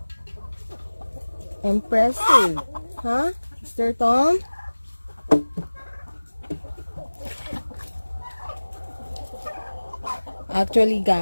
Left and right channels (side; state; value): both; inverted; correlation -1.00